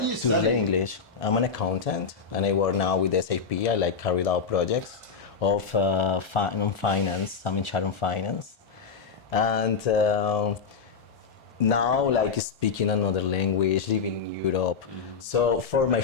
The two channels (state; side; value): quieter; right; 5.6 dB